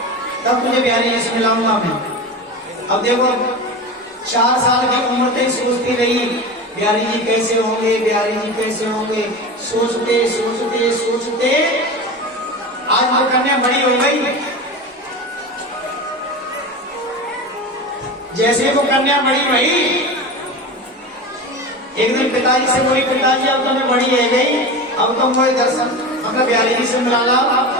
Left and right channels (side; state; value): both; normal; correlation 0.27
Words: तब तुझे बिहारी जी से मिलाऊंगा मैं। अब देखो 4 साल की उम्र तक सोचती रही बिहारी जी कैसे होंगे, बिहारी जी कैसे होंगे, सोचते सोचते सोचते आज वो कन्या बड़ी हो गई। जैसे वो कन्या बड़ी हुई, एक दिन पिताजी से बोली, पिताजी अब तो मैं बड़ी है गई, अब तो मुझे दर्शन मतलब बिहारी जी से मिला ला।